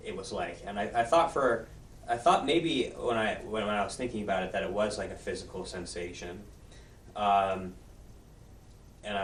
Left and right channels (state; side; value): identical; both; correlation 1.00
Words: it was like, and I thought maybe when I was thinking about it that it was like a physical sensation, and